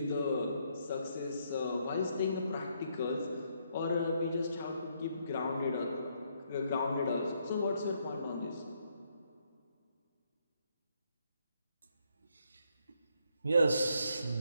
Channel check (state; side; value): inverted; both; correlation -0.73